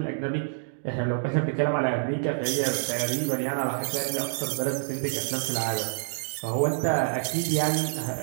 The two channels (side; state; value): left; silent; digital silence